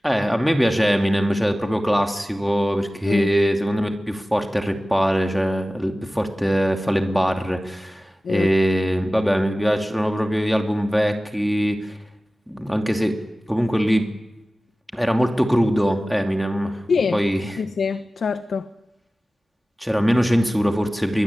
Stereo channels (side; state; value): both; normal; correlation 0.96